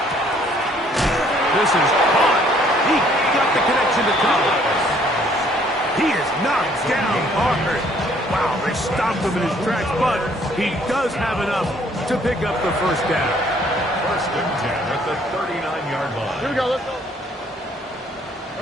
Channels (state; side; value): normal; both; correlation 0.62